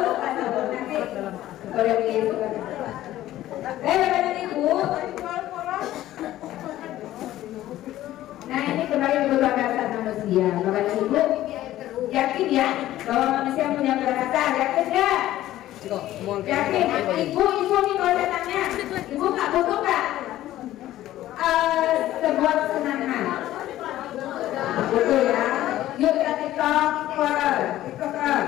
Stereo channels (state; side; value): quieter; right; 14.3 dB